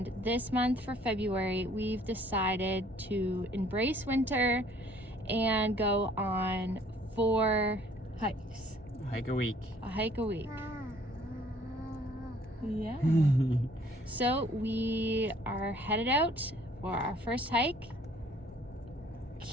this month for February, we've decided to embrace winter and go on 4 hikes. Hike a week. A hike a week. Yeah. So we are headed out for our first hike.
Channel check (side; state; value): both; normal; correlation 0.59